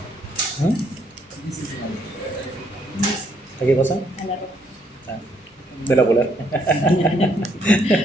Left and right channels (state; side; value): normal; both; correlation 0.70